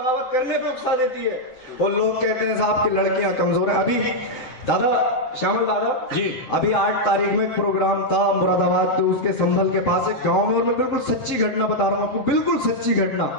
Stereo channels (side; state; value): right; late; 7.7 ms